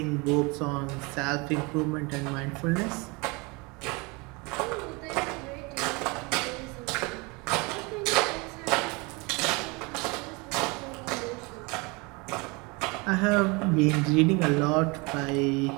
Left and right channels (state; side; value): quieter; left; 27.5 dB